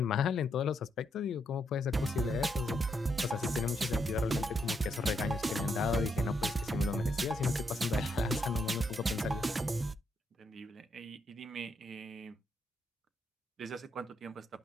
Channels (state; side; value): normal; both; correlation 0.78